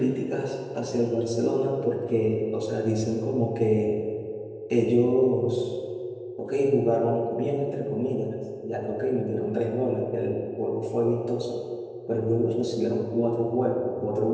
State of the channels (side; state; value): both; identical; correlation 1.00